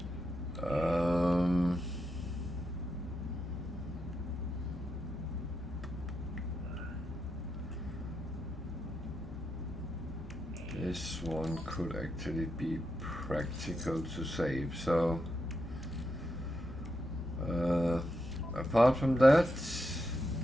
This one could actually be practical to save, so apart from that,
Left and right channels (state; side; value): normal; both; correlation 0.84